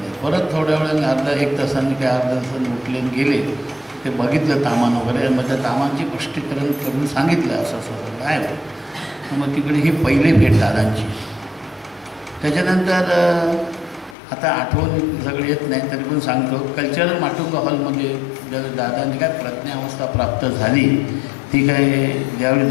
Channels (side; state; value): right; drops out; at 14.2 s